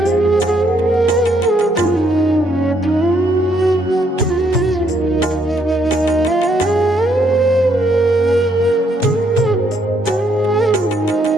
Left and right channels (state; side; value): normal; both; correlation 0.72